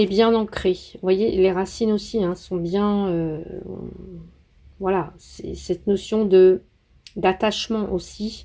bien ancré. Vous voyez, les racines aussi hein, sont bien... voilà, c'est cette notion d'attachement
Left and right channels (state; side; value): identical; both; correlation 1.00